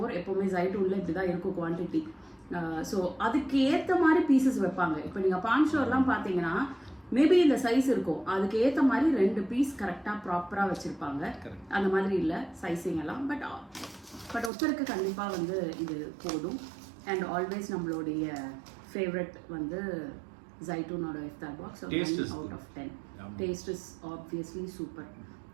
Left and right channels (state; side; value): drops out; left; at 14.5 s